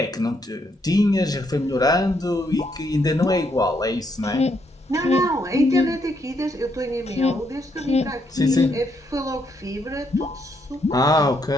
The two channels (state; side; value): normal; both; correlation 0.75